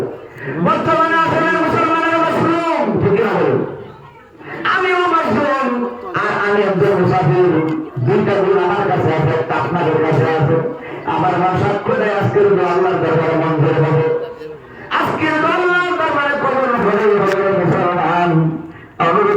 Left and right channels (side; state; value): both; identical; correlation 1.00